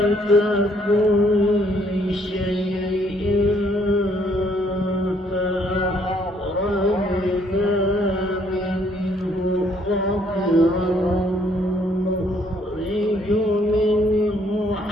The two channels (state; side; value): normal; both; correlation 0.66